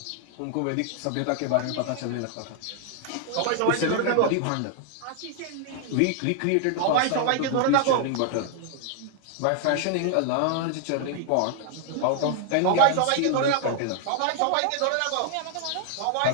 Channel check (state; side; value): different; both; correlation 0.00